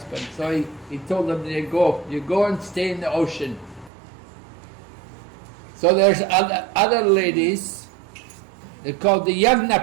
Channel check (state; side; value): drops out; left; at 3.9 s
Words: So he told them, you go and stay in the ocean. So there's other ladies, they're called the